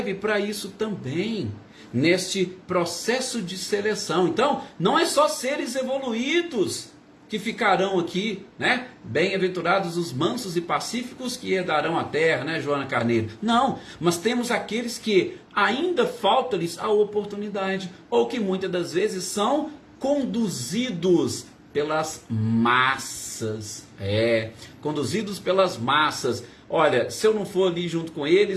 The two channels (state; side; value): identical; both; correlation 1.00